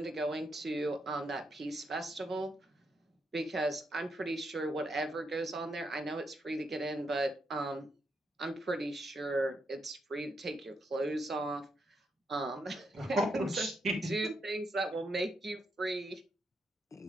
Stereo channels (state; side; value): normal; both; correlation 0.80